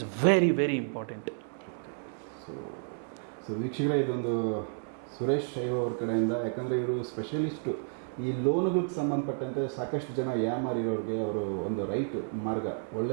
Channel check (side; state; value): left; silent; digital silence